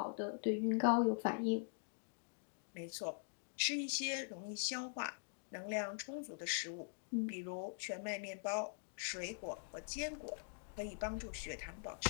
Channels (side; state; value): right; silent; digital silence